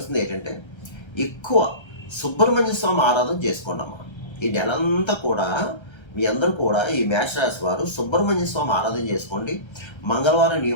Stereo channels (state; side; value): late; right; 1.3 ms